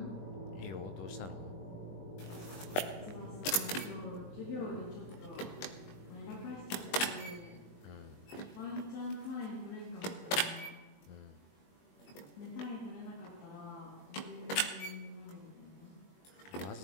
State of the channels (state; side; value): late; right; 21 ms